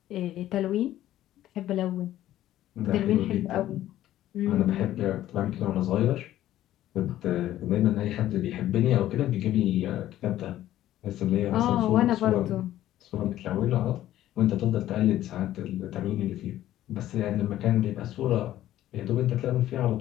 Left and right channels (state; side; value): quieter; right; 13.4 dB